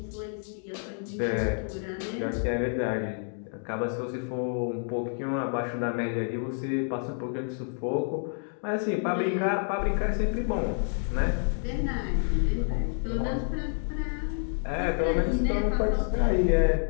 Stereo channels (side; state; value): right; silent; 59 dB below the other